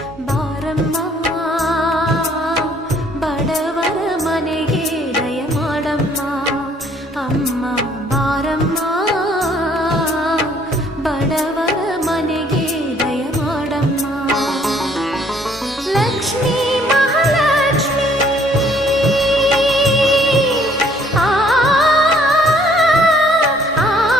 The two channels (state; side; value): normal; both; correlation 0.61